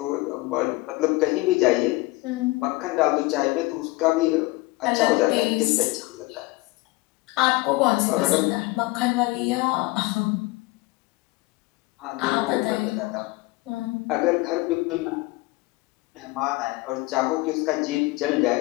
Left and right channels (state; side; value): quieter; right; 21.9 dB